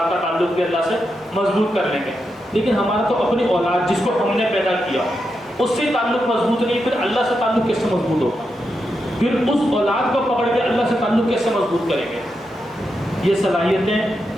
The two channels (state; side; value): normal; both; correlation 0.86